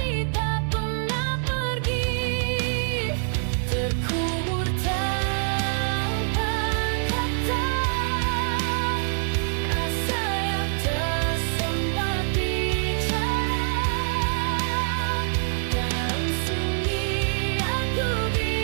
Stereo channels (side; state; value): left; silent; digital silence